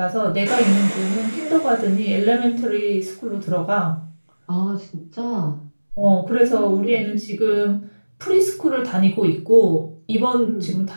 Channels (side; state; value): both; inverted; correlation -1.00